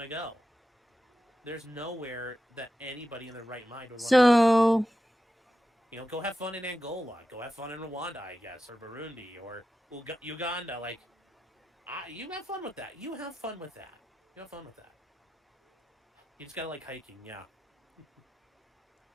to go. There's nowhere that anybody in their right mind would want to go. Go have fun in Angola. Go have fun in Rwanda, I guess, or Burundi, or Uganda. You have fun with that. You have fun with that. You just got to like hiking, yeah.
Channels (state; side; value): normal; both; correlation 0.91